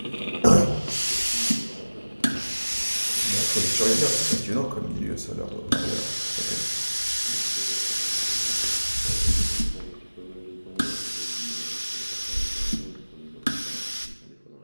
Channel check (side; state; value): both; inverted; correlation -1.00